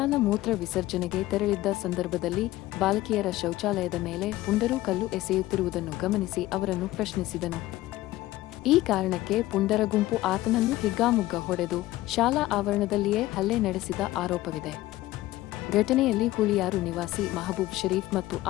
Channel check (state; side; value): quieter; right; 16.6 dB